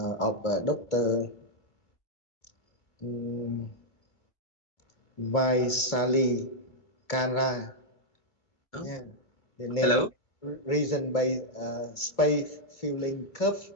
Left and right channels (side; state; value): right; late; 2.4 ms